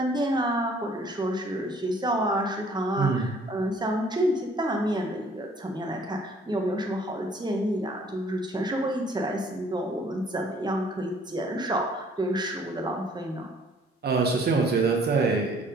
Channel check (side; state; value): both; normal; correlation 0.58